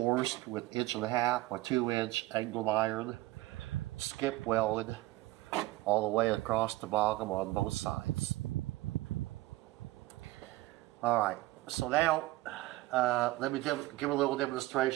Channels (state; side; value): quieter; left; 18.5 dB